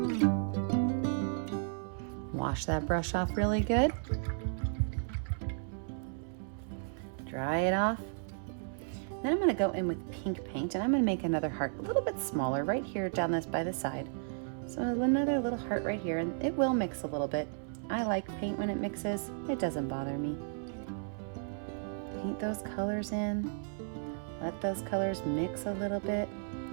Wash that brush off really good. Dry it off. Then I'm going to go in with pink paint and I'm going to make another heart a little bit smaller right here down this by the side. So another little heart right here, and it will mix a little bit. I like paint when it mixes. It doesn't bother me. Paint those colors in. Let those colors mix a little bit.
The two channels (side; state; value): left; silent; 55 dB below the other